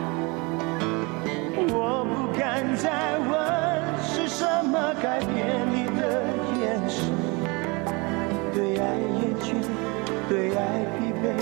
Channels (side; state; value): left; quieter; 27.9 dB